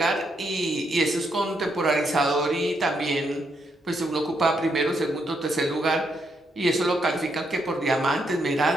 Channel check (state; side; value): normal; both; correlation 0.77